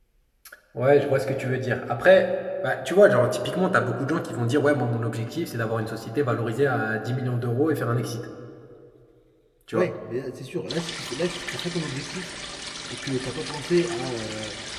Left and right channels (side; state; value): both; identical; correlation 1.00